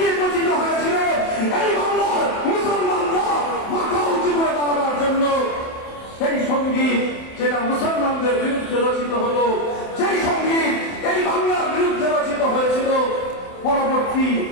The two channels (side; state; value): right; late; 27 ms